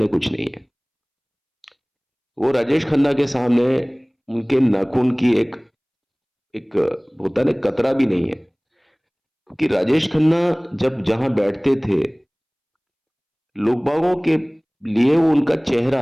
कुछ नहीं है। वो राजेश खन्ना के सामने उनके नाखून की एक एक होता है ना, कतरा भी नहीं है। क्योंकि राजेश खन्ना जब जहां बैठते थे, लोग बागों के लिए वो उनका चेहरा,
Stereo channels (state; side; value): identical; both; correlation 1.00